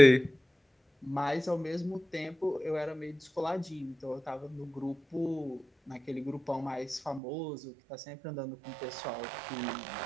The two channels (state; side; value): drops out; left; at 7.2 s